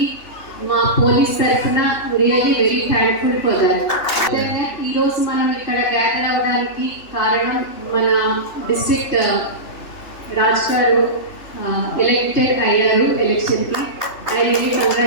మా పోలీస్ తరఫున really very thankful for that. ఈ రోజు మనం ఇక్కడ గ్యాదర్ అవ్వడానికి కారణం మన డిస్ట్రిక్ట్ రాజ్ గారు ఎలక్టెడ్ అయ్యారు ఎలక్షన్ కి. I really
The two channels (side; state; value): right; late; 3.2 ms